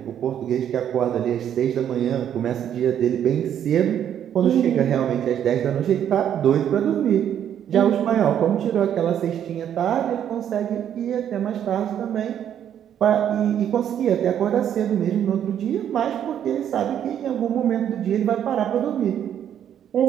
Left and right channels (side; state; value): left; quieter; 9.7 dB